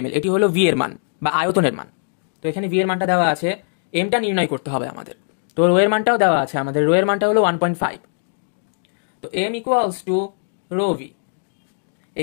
ml, এটি হলো ভি এর মান বা আয়তনের মান। তো এখানে ভি এর মানটা দেওয়া আছে, এমটা নির্ণয় করতে হবে আমাদের। তো রো এর মানটাও দেওয়া আছে আমাদের, রো এর মানটা হলো 1.5। তো M equals to rho V.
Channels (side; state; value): right; silent; digital silence